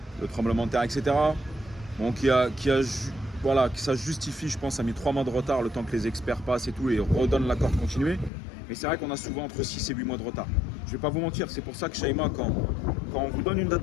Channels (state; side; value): drops out; right; at 8.3 s